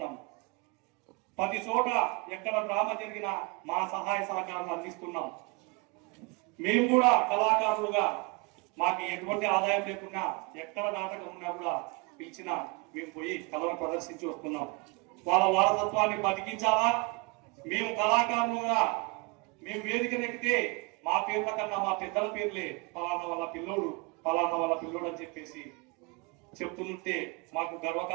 ప్రతి చోట ఎక్కడ డ్రామా జరిగినా మా సహాయ సహకారాలు అందిస్తున్నాం. మేము కూడా కళాకారులుగా మాకు ఎటువంటి ఆదాయం లేకున్నా ఎక్కడ నాటకం ఉన్నా కూడా పిలిచినా మేము పోయి కళను ప్రదర్శించి వస్తున్నాం. వాళ్ళ వారసత్వాన్ని బతికించాలా, మేము కళాకారులుగా మేము వేదిక నెక్కితే మా పేర్ల కన్నా మా పెద్దల పేర్లే పలానా వాళ్ళ పిల్లోడు పలానా వాళ్ళ పిల్లోడు అని చెప్పేసి చెప్తుంటే మాకు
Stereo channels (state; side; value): quieter; left; 29.1 dB